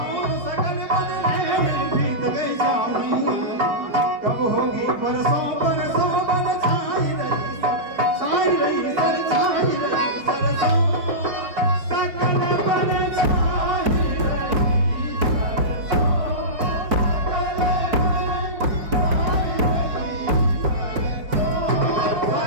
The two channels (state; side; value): late; left; 5.1 ms